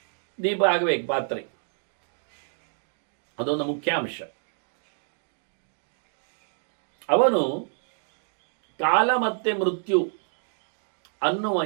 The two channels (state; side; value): silent; left; digital silence